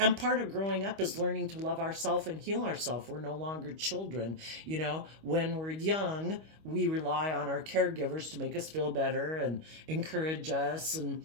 part of growing up is learning to love ourselves and heal ourselves. We're no longer children. You know, when we're young, we rely on our caregivers to make us feel better and encourage us and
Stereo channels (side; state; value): left; late; 25 ms